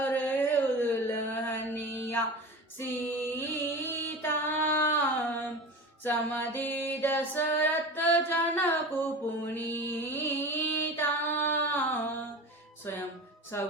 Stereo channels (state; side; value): normal; both; correlation 0.31